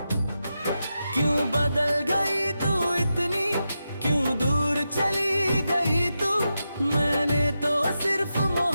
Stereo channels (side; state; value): both; inverted; correlation -0.89